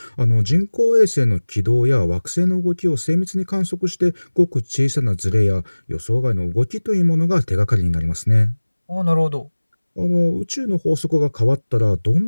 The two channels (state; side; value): inverted; both; correlation -1.00